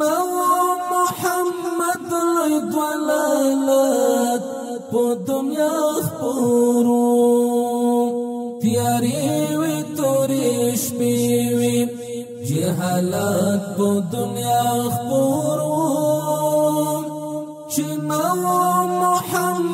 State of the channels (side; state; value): both; identical; correlation 1.00